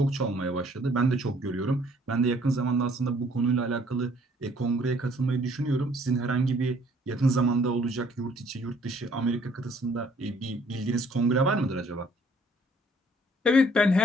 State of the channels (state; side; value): normal; both; correlation 0.60